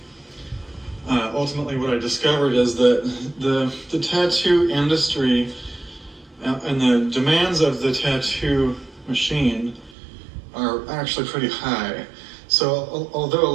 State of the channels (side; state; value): left; drops out; at 10.0 s